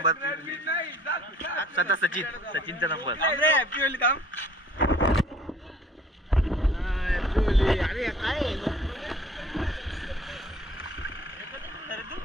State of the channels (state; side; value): normal; both; correlation 0.54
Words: स्वतः सचिनचा नंबर. हॅपी होईल काम. अरे काय